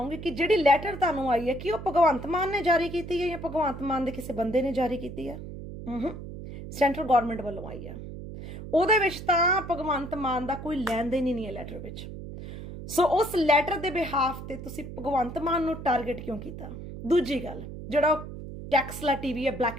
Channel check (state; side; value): noise; right; hum, 10 dB below the sound